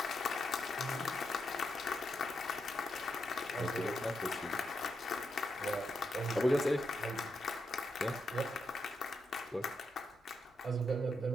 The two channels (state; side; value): normal; both; correlation 0.83